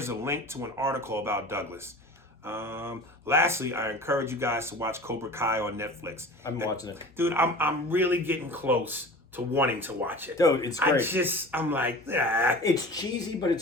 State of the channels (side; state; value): both; normal; correlation 0.38